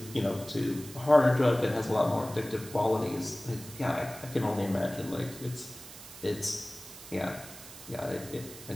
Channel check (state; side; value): noise; right; hiss, 15 dB below the sound